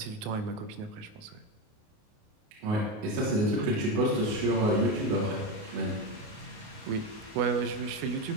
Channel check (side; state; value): left; late; 28 ms